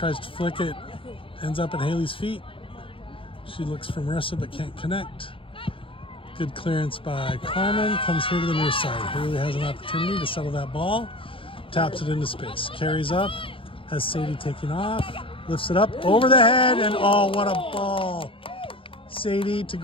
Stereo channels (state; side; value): late; right; 0.26 ms